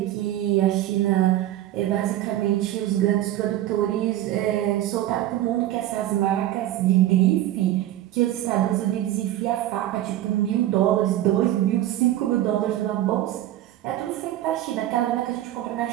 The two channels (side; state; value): left; quieter; 13.6 dB